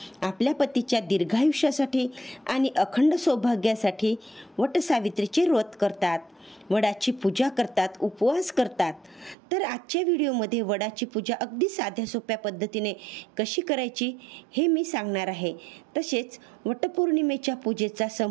आपल्या पतीच्या दीर्घायुष्यासाठी आणि अखंड सौभाग्यासाठी वटसावित्रीचे व्रत करतात, वडाची पूजा करतात, उपवास करतात। तर आजच्या व्हिडिओमध्ये वडाची पूजा अगदी साध्या सोप्या पद्धतीने कशी करायची हे मी सांगणार आहे। तसेच वटपौर्णिमेच्या पूजेचा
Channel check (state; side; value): drops out; left; at 9.3 s